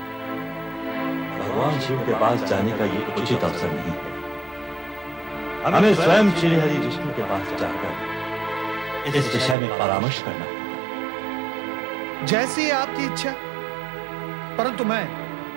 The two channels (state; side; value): drops out; left; at 9.6 s